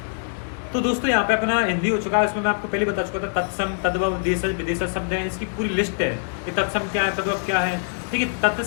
तो दोस्तों यहाँ पे अपना हिंदी हो चुका है, इसमें मैं आपको पहले बता चुका था तत्सम, तद्भव, देशज, विदेशज शब्द हैं, इसकी पूरी लिस्ट है कि तत्सम क्या है, तद्भव क्या है, ठीक है।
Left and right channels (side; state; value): right; silent; digital silence